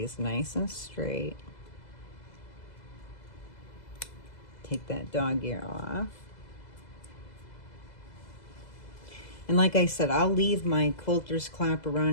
nice and straight. Take that dog ear off. And like I said, I'll leave my quilter's clapper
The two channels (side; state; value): right; late; 2.0 ms